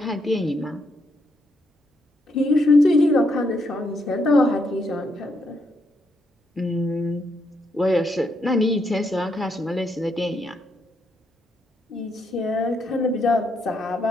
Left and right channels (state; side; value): normal; both; correlation 0.77